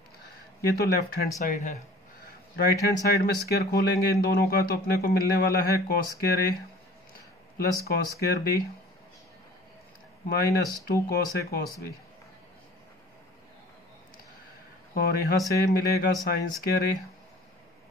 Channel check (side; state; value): both; normal; correlation 0.47